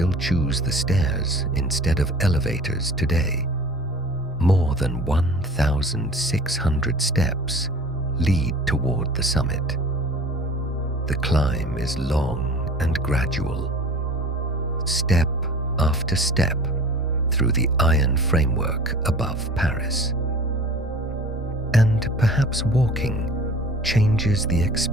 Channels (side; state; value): both; normal; correlation 0.43